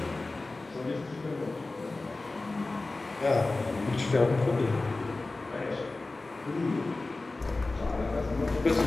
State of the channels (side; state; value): right; quieter; 3.3 dB